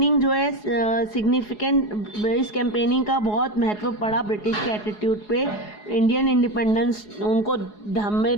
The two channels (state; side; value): late; right; 4.8 ms